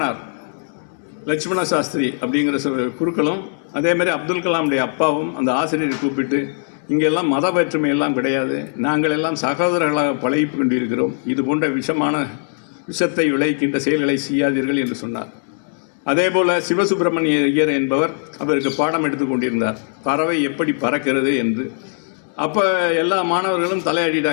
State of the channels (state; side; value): silent; right; digital silence